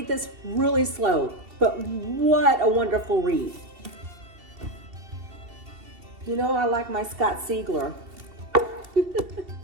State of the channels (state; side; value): late; left; 2.7 ms